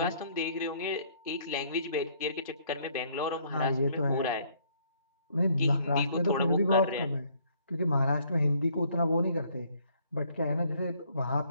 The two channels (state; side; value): inverted; both; correlation -0.64